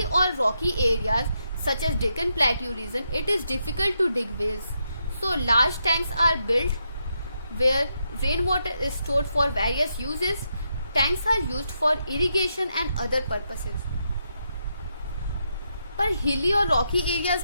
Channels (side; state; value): both; inverted; correlation -0.82